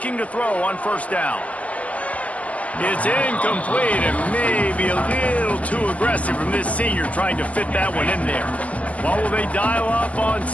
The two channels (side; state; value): right; late; 0.070 ms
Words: to throw on first down. It's incomplete and maybe a little too aggressive from this senior trying to fit that one in there. What will they dial up on